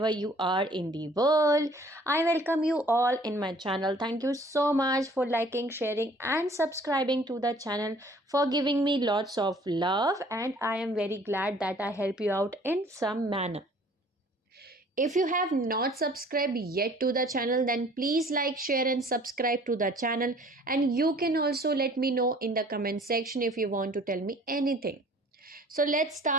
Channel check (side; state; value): both; normal; correlation 0.54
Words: you are in the world. I welcome you all in my channel. Thank you so much for liking, sharing, and subscribing to the channel, for giving me lots of love. And I am very glad that I help you out in some manner. If you have not subscribed yet to the channel, then please like, share, and subscribe to the channel. And you can also let me know in the comment section if you want to tell me anything. So let's